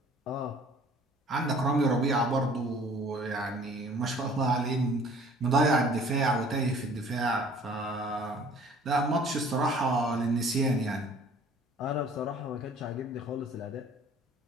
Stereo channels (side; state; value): both; normal; correlation 0.52